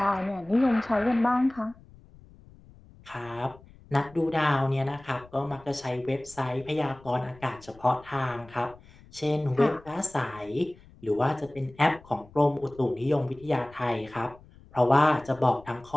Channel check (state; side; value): noise; left; rumble, 24 dB below the sound